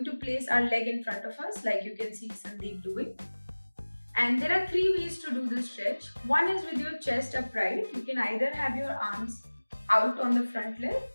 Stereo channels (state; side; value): inverted; both; correlation -1.00